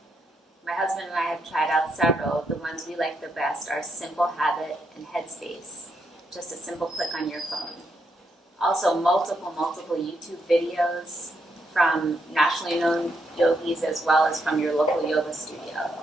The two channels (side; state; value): both; normal; correlation 0.79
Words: My husband and I have tried out several. The ones we like the best are Simple Habit and Headspace. Just a simple click on your phone. Also, multiple YouTube videos from nationally known yogis as well as from your local yoga studio.